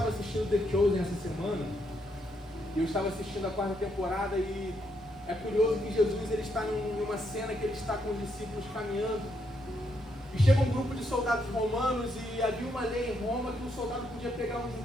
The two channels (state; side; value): normal; both; correlation 0.77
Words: assistindo The Chosen essa semana, e eu estava assistindo a 4ª temporada, e é curioso que Jesus ele está numa cena que ele está com os discípulos caminhando, e chega um grupo de soldados romanos, e havia uma lei em Roma que um soldado podia pegar um